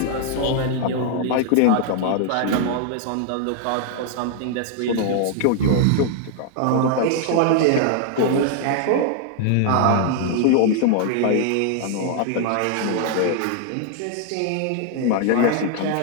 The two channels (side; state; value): both; different; correlation 0.00